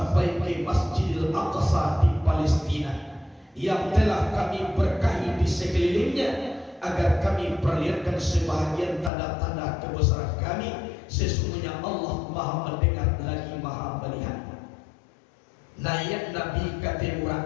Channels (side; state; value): right; drops out; at 9.1 s